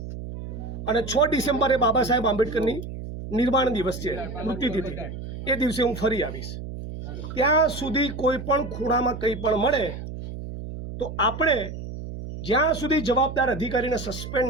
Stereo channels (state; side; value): noise; right; hum, 9 dB below the sound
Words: અને 6 ડિસેમ્બરે બાબા સાહેબ આંબેડકરની નિર્વાણ દિવસ છે, મૃત્યુતિથિ, એ દિવસે હું ફરી આવીશ. ત્યાં સુધી કોઈ પણ ખૂણામાં કંઈ પણ મળે તો આપણે જ્યાં સુધી જવાબદાર અધિકારીને સસ્પેન્ડ